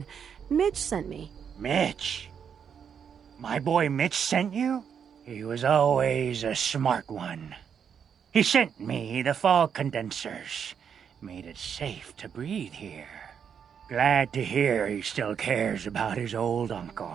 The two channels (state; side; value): quieter; left; 7.5 dB